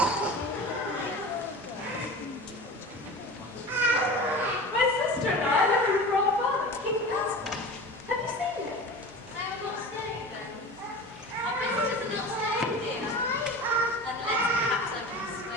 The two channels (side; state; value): both; normal; correlation 0.34